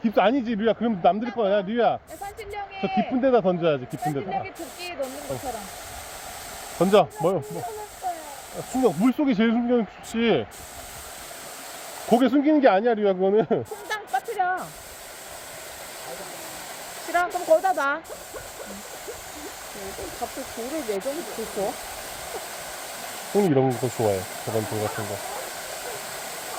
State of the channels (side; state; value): both; identical; correlation 1.00